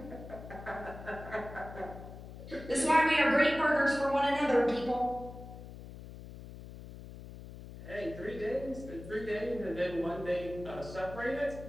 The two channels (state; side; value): noise; left; hum, 13 dB below the sound